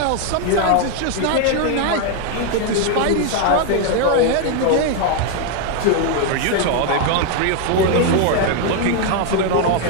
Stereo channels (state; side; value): different; both; correlation 0.01